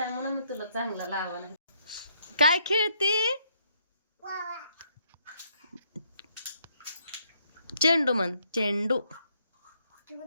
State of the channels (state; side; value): inverted; both; correlation -0.70